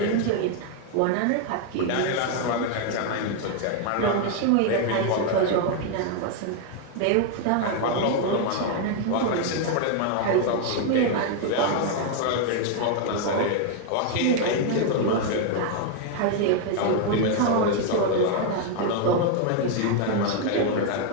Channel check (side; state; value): both; different; correlation 0.00